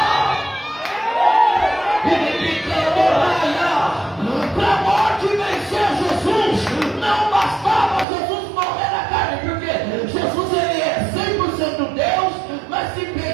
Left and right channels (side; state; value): left; drops out; at 8.1 s